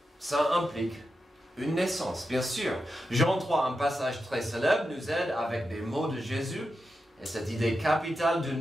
ça implique une naissance, bien sûr. Jean 3, un passage très célèbre, nous aide avec des mots de Jésus et cette idée capitale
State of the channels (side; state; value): both; normal; correlation 0.89